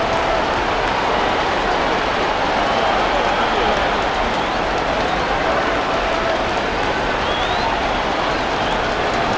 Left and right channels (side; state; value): both; identical; correlation 1.00